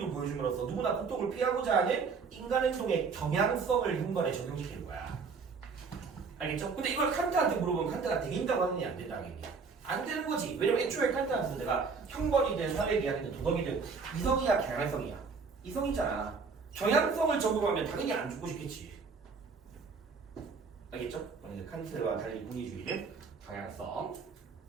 보여줌으로써 누구나 고통을 피하고자 하는 인간 행동의 경향성을 현관에 적용시키는 거야. 알겠죠? 근데 이걸 칸트한테 물어보면 칸트가 되긴다고 하느니 안 된다는 얘기야. 안 되는 거지. 왜냐면 애초에 칸트한테서 내가 형벌이든 사회계약이든 도덕이든 이성이야 경향성이야. 이성이잖아. 경향성을 적용하면 당연히 안 죽고 싶겠지. 알겠죠? 칸트와 달리 공리주의는 경향성.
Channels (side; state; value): left; quieter; 5.0 dB